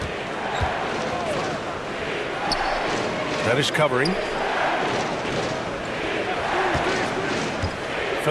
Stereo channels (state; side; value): identical; both; correlation 1.00